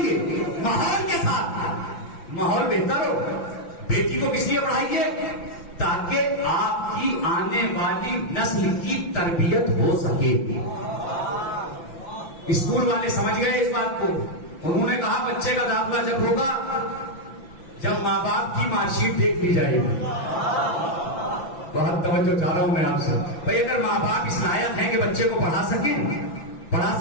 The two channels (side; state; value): right; late; 5.9 ms